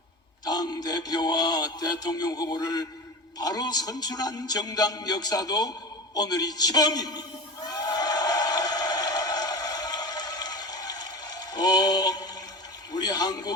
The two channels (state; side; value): normal; both; correlation 0.29